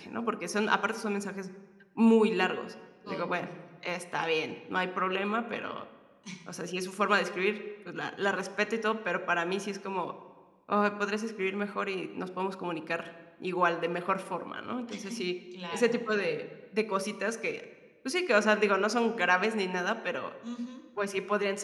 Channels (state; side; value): identical; both; correlation 1.00